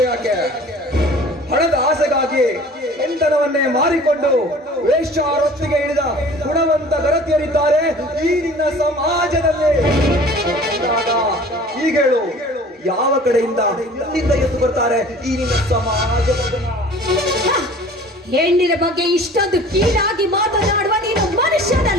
ಯಾಕೆ, ಹಣದ ಆಸೆಗಾಗಿ ಹೆಂಡನವನ್ನೇ ಮಾರಿಕೊಂಡು ವೇಶ್ಯಾರೊತ್ತಿಗೆ ಇಳಿದ ಗುಣವಂತ ಗರತಿಯರಿದ್ದಾರೆ ಈ ನಿನ್ನ ಸಮಾಜದಲ್ಲಿ. ಈಗ ಹೇಳು, ಯಾವ ಕಡೆಯಿಂದ ಎಲ್ಲಿಂದ ಎದ್ದು ಬರ್ತಾರೆ ಈ ನಿನ್ನ ಸಮಾಜದ ಜನ? ಹೆಣ್ಣಿನ ಬಗ್ಗೆ ಇಷ್ಟೊಂದು ಕೀಳಾಗಿ ಮಾತನಾಡುವ ನೀನು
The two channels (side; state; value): both; normal; correlation 0.46